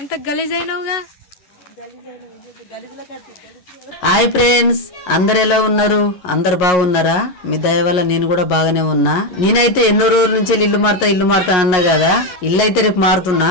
గలీజ్ అయినావుగా. హాయ్ ఫ్రెండ్స్, అందరు ఎలా ఉన్నారు? అందరు బాగున్నారా? మీ దయ వల్ల నేను కూడా బాగానే ఉన్నా. నేనైతే ఎన్నో రోజుల నుంచి ఇల్లు మారుతా అన్నా కదా. ఇల్లు అయితే రేపు మారుతున్నా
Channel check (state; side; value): late; right; 11 ms